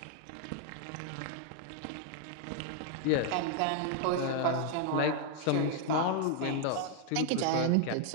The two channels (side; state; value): both; different; correlation 0.00